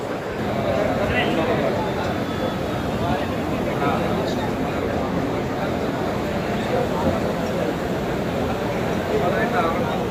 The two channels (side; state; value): both; identical; correlation 1.00